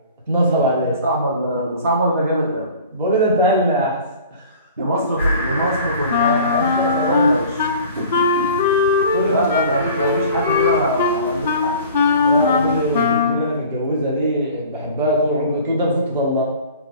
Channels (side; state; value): both; inverted; correlation -0.45